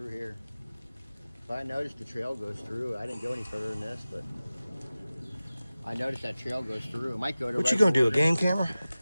here. But I noticed the trail goes through. I didn't go any further than this, but I noticed that trail goes through. It might go to. What you gonna do, a game camera?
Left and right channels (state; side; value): inverted; both; correlation -0.97